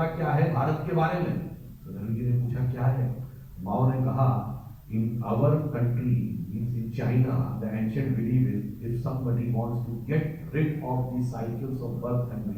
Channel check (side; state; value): both; identical; correlation 1.00